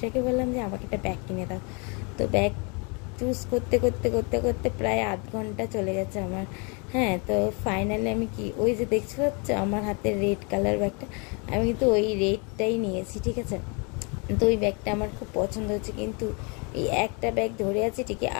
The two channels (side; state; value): right; quieter; 33.0 dB